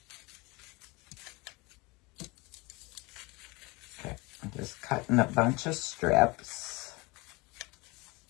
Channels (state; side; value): quieter; right; 25.3 dB